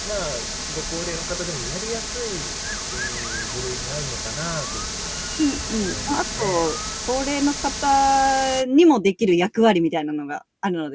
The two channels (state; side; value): identical; both; correlation 1.00